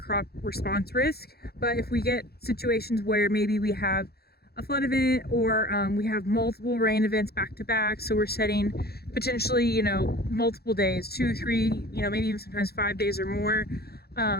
response risk. But if we get situations where maybe we have a flood event or we have multiple rain events back to back, so we're setting potentially, multiple days, 2, 3, maybe even sometimes 5 days or more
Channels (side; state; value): right; late; 0.46 ms